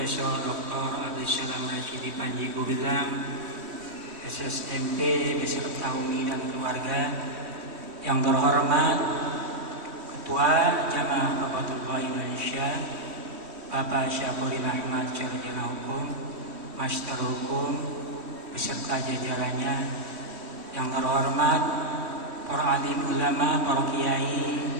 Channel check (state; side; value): late; left; 3.1 ms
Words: Dr. Abdul Salam Rasyidi Panji Gumilang SSMP beserta umi dan keluarga. Yang terhormat Ketua Jamaah Qabatullah Indonesia Bapak Syafuril Ahmad Sarjana Hukum, Master Hukum beserta jajarannya. Yang terhormat para alim ulama, para kiai,